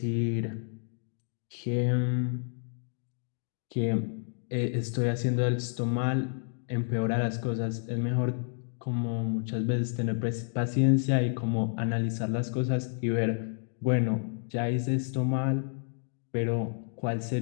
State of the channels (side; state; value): right; silent; digital silence